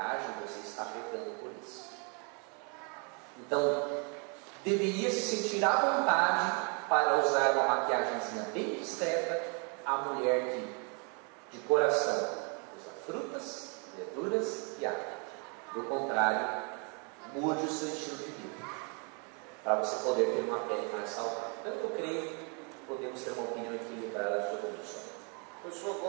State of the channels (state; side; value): quieter; left; 35.9 dB